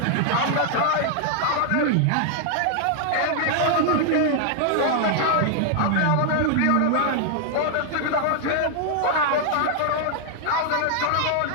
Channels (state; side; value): different; both; correlation 0.00